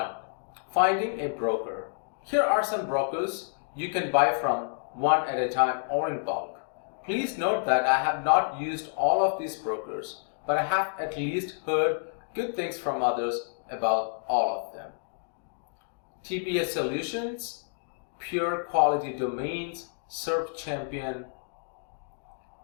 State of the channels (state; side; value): silent; right; digital silence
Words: Finding a broker. Here are some brokers you can buy from, one at a time or in bulk. Please note that I have not used all of these brokers, but I have at least heard good things from others about all of them. TBS Solutions, Pure Quality Domains, Surf Champion.